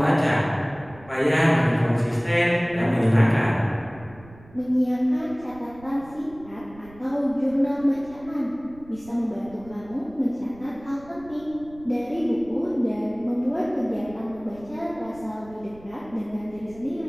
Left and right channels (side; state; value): right; noise; rumble, 21 dB below the sound